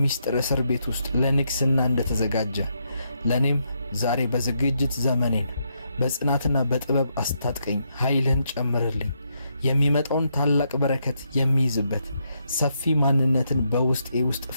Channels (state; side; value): inverted; both; correlation -0.79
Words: እስር ቤት ውስጥ ለንግሥና እንደተዘጋጀ ለእኔም ዛሬ በዝግጅት ዘመኔን በጽናትና በጥበብ አስታጥቀኝ። ኃይልህን ጨምርልኝ። የሚመጣውን ታላቅ በረከት የሚይዝበት ሰፊ ማንነትን በውስጤ ውስጥ